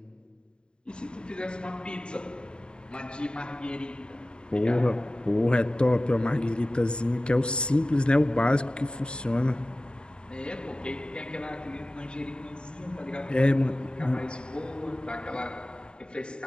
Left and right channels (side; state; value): right; late; 0.051 ms